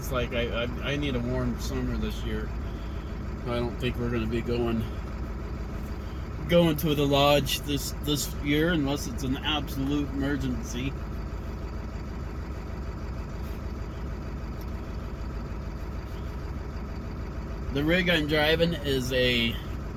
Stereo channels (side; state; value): both; identical; correlation 1.00